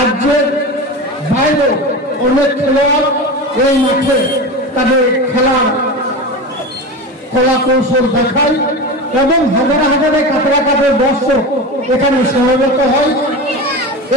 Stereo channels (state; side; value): normal; both; correlation 0.26